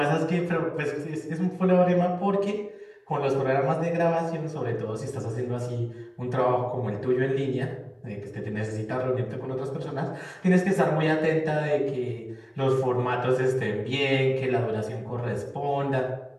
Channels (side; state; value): both; identical; correlation 1.00